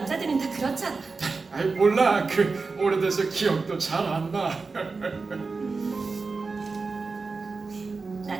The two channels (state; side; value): quieter; left; 4.2 dB